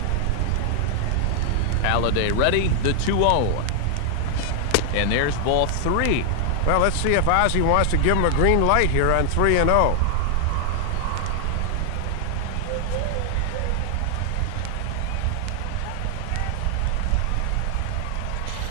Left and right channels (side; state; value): both; different; correlation 0.00